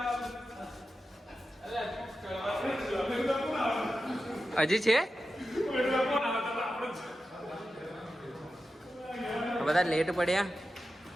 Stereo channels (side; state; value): both; normal; correlation 0.92